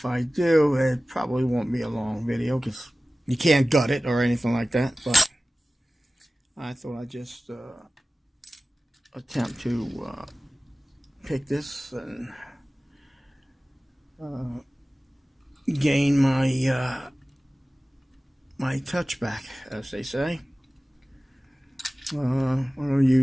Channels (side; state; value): both; normal; correlation 0.97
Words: I do, it probably won't be a long video because you can't gut it or anything like that. But I thought I'd just attempt to pick this and gain my my touch back, as they say. I'm going to